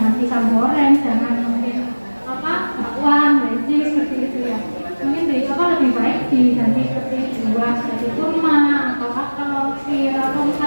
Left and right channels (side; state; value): both; inverted; correlation -1.00